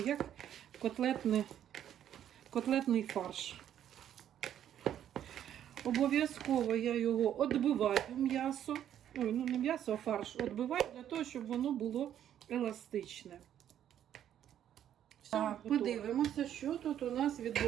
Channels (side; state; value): left; quieter; 10.4 dB